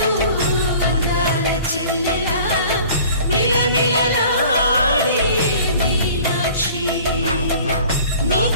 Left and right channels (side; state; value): both; inverted; correlation -0.47